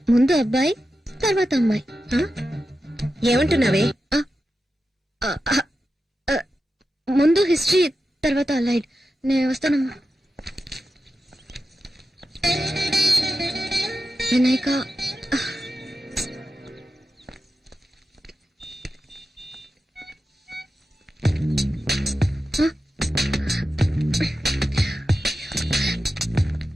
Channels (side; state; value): both; normal; correlation 0.91